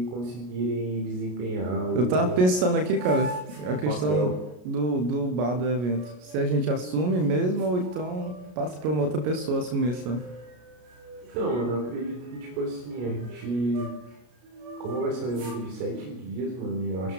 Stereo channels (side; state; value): left; late; 33 ms